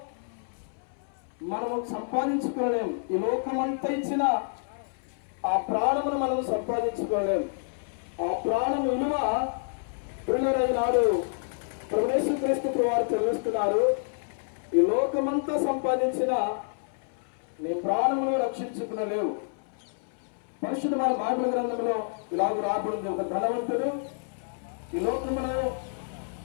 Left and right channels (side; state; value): right; silent; 59 dB below the other